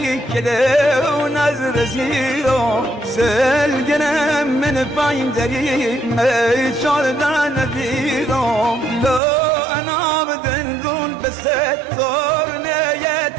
کده و نظر زیرا سلگنم من پایندری چاردن دیرا لا انا بدن دون بستار نیت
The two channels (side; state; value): left; drops out; at 9.2 s